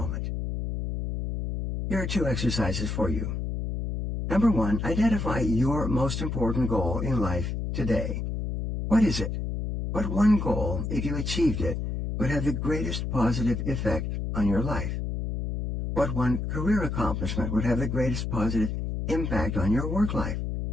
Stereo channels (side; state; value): left; noise; hum, 3 dB below the sound